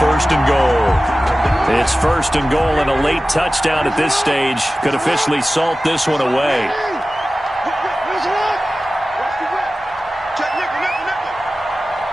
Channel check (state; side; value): normal; both; correlation 0.96